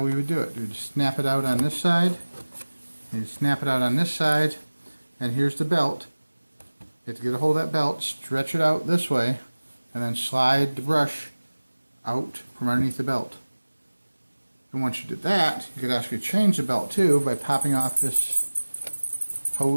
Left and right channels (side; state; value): both; inverted; correlation -1.00